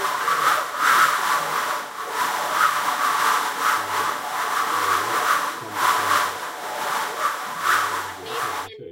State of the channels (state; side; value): identical; both; correlation 1.00